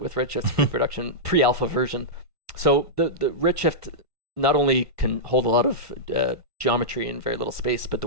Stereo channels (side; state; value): left; late; 1.3 ms